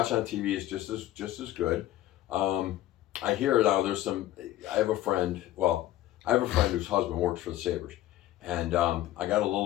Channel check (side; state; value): right; quieter; 14.6 dB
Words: on TV is just as good. I hear now there's some. I have a friend. Well, I have a friend whose husband works for the Sabres, and I got a